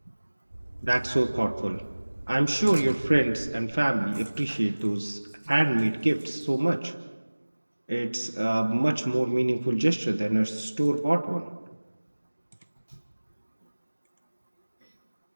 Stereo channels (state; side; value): inverted; both; correlation -1.00